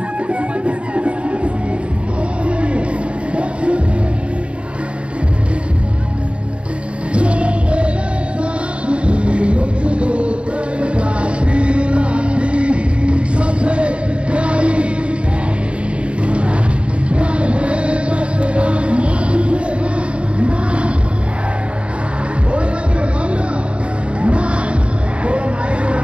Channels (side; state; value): left; late; 0.059 ms